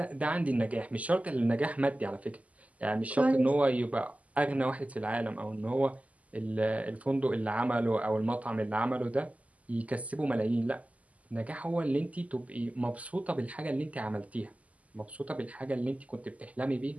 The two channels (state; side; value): late; left; 0.071 ms